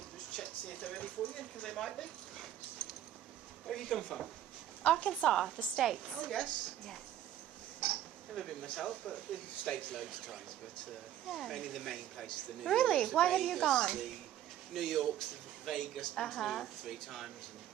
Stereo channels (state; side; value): quieter; left; 11.8 dB